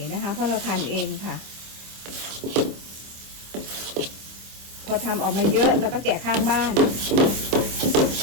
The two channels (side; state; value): left; late; 26 ms